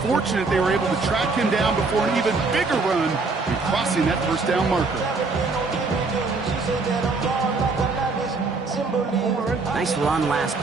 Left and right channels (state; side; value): quieter; left; 4.0 dB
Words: they were able to track him down before an even bigger run and crossing that first down marker. Nice run last